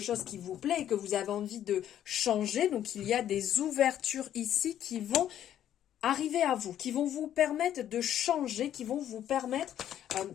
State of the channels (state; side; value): quieter; right; 10.9 dB